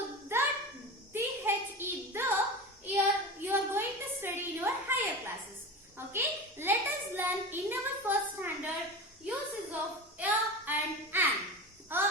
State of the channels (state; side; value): normal; both; correlation 0.28